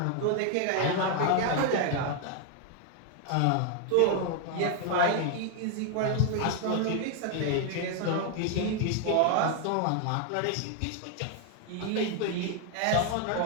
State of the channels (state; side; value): different; both; correlation 0.00